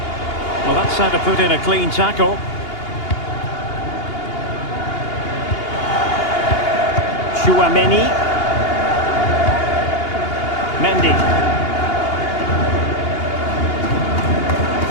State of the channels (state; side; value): late; right; 2.8 ms